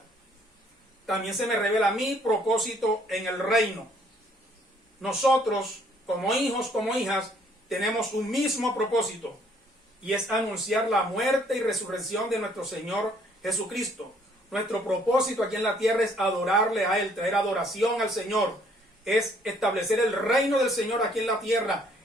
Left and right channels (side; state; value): both; normal; correlation 0.63